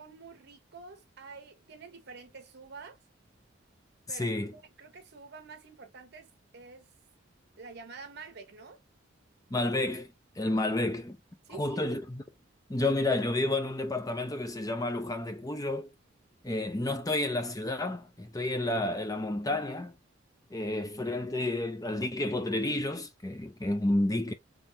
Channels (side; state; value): both; normal; correlation 0.61